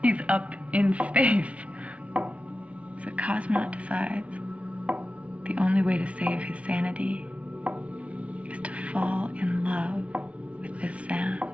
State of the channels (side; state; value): left; late; 0.064 ms